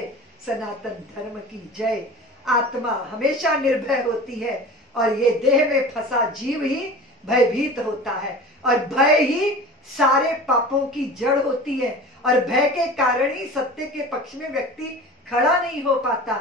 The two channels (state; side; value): normal; both; correlation 0.37